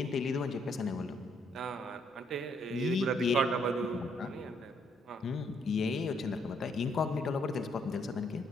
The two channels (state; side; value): normal; both; correlation 0.71